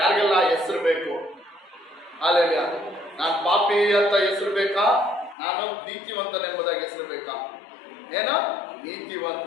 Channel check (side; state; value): right; drops out; at 5.4 s